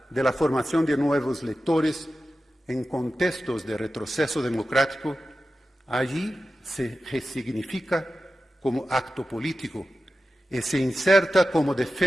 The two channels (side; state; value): both; normal; correlation 0.93